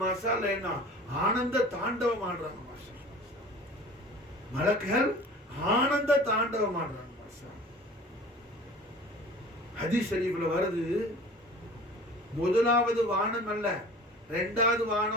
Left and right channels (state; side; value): normal; both; correlation 0.43